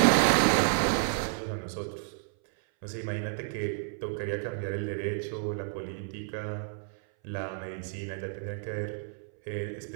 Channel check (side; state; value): left; silent; 57 dB below the other